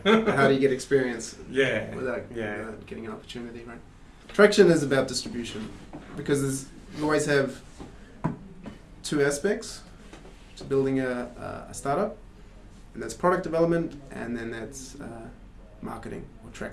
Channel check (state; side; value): identical; both; correlation 1.00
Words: But how do you get experience without getting an opportunity, right? Traction is about distribution because you always have two aspects to building a startup, and that's product development, and then that's marketing or